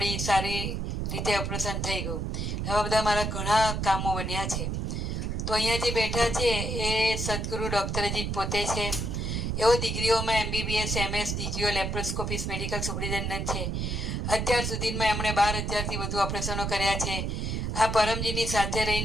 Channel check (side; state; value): right; noise; rumble, 1 dB below the sound